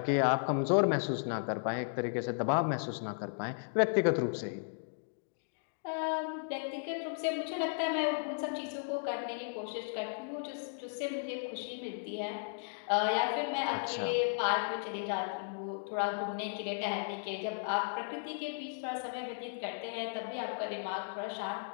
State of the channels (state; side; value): silent; right; digital silence